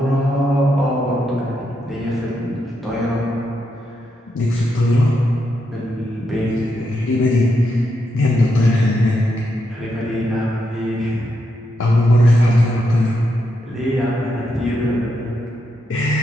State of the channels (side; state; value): both; normal; correlation 0.82